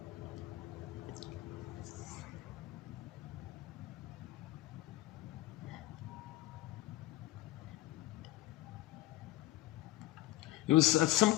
It was at some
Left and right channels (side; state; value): right; quieter; 16.3 dB